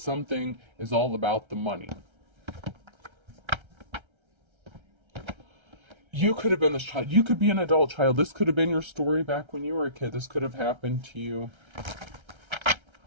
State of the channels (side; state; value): left; late; 1.3 ms